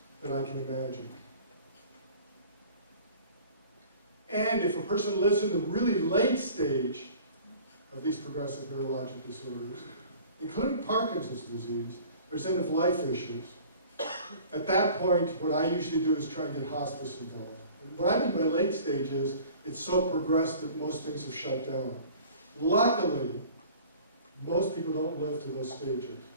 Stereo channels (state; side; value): inverted; both; correlation -0.46